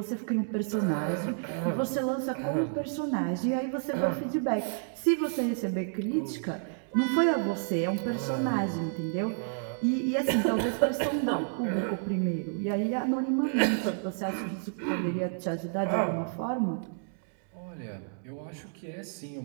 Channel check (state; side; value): silent; left; digital silence